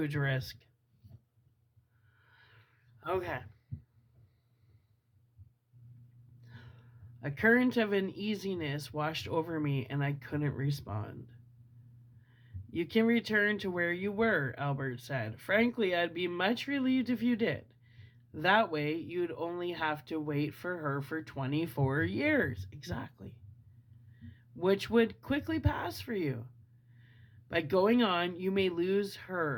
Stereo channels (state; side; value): identical; both; correlation 1.00